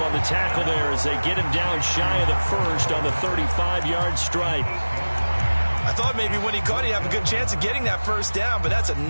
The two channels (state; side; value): inverted; both; correlation -1.00